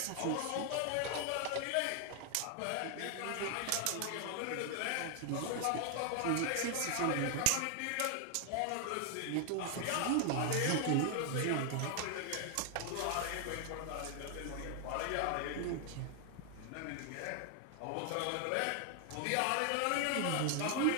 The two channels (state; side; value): different; both; correlation 0.00